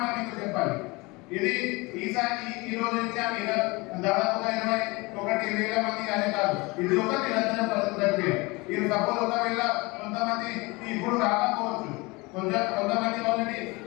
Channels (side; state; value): right; quieter; 24.9 dB